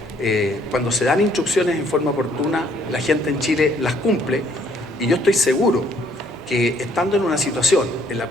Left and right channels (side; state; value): both; normal; correlation 0.65